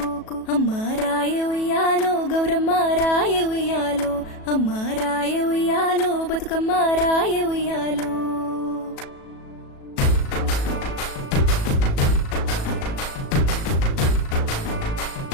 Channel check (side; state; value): right; late; 37 ms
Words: అమ్మ రాయ ఉయ్యాలో గౌరమ్మ రాయ ఉయ్యాలో, అమ్మ రాయ ఉయ్యాలో బతుకమ్మ రాయ ఉయ్యాలో.